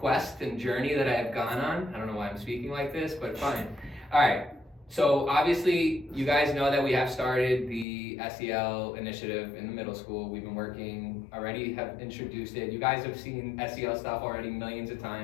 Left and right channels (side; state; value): right; drops out; at 7.9 s